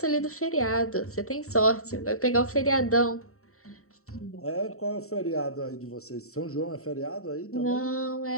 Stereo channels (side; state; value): right; late; 0.64 ms